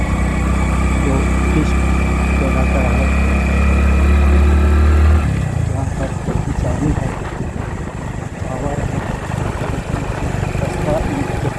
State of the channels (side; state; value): both; identical; correlation 1.00